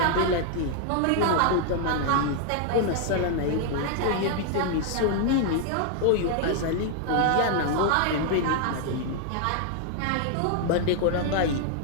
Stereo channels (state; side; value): different; both; correlation 0.00